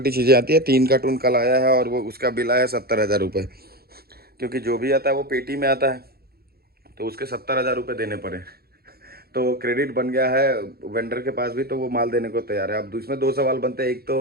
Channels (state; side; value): late; left; 0.45 ms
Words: चीज़ें आती है। 3 कार्टून कल आया है और वो उसका बिल आया 70,000 रुपये, क्योंकि जो भी आता है वो पेटी में आता है, तो उसके 70,000 रुपये देने पड़े। तो क्रेडिट बन गया है वेंडर के पास भी, तो वो माल देने को तैयार है। अब इसमें 2 सवाल बनते हैं। एक तो